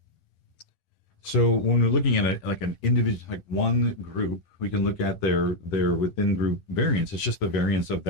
So when we're looking at an individual, like one group, we can look at their within group variance. It's just the variance of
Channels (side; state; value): right; late; 10 ms